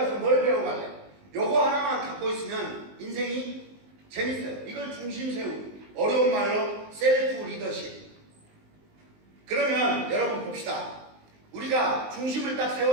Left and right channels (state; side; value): late; left; 19 ms